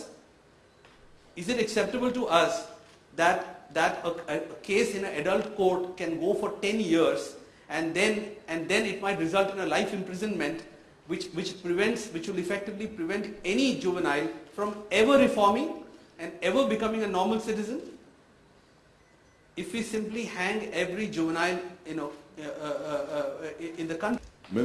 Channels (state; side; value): identical; both; correlation 1.00